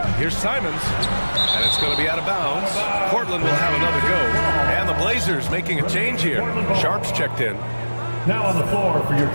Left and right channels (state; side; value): inverted; both; correlation -1.00